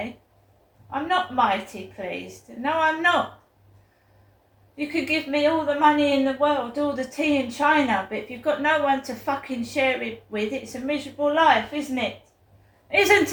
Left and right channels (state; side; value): identical; both; correlation 1.00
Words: I'm not mighty pleased. No, I'm not. You could give me all the money in the world, all the tea in China, but if you've got no one to fucking share it with, it's a miserable life, isn't it? Isn't